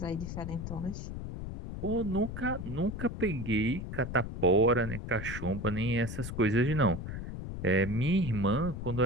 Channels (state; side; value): noise; left; rumble, 7 dB below the sound